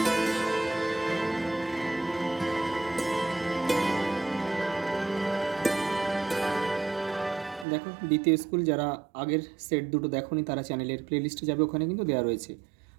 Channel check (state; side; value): drops out; left; at 7.7 s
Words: দেখো, দ্বিতীয় স্কুল যারা আগের সেট দুটো দেখোনি তারা চ্যানেলের প্লেলিস্টে যাবে, ওখানে কিন্তু দেওয়া রয়েছে।